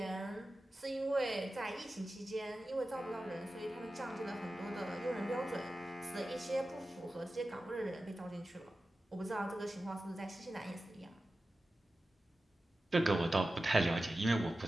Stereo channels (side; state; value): both; normal; correlation 0.94